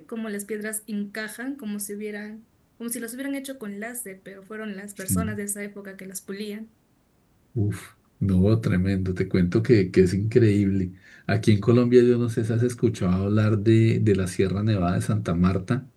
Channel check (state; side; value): identical; both; correlation 1.00